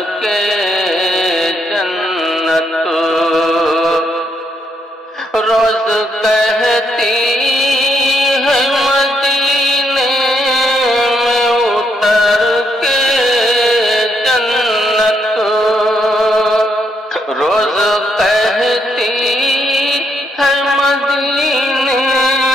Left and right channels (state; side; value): normal; both; correlation 0.75